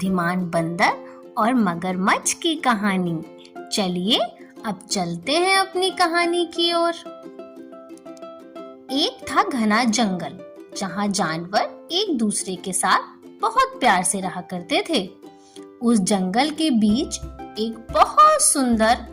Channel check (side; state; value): both; identical; correlation 1.00